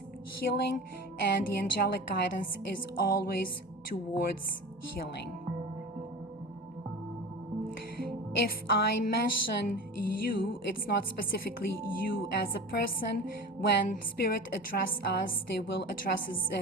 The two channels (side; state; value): both; normal; correlation 0.33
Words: healing, and the angelic guidance is always towards healing. If I mention you, it's not specifically you as a person. When Spirit address us, they will address us